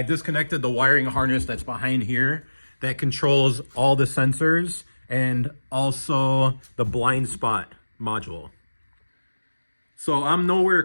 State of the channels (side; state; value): both; inverted; correlation -1.00